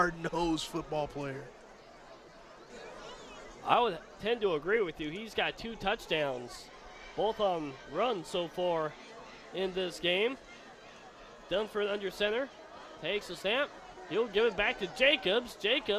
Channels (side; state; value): both; identical; correlation 1.00